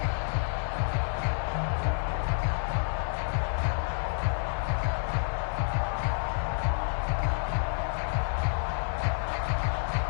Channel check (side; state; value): right; silent; digital silence